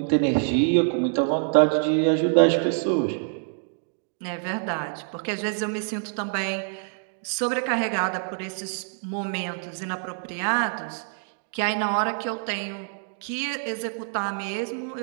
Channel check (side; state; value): left; silent; 61 dB below the other